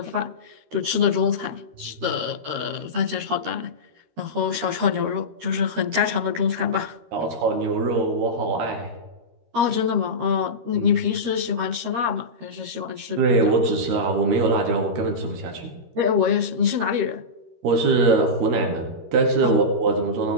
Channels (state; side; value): late; left; 13 ms